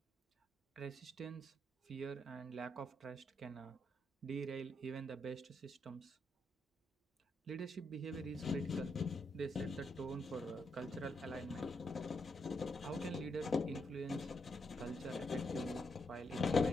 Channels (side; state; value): both; normal; correlation 0.80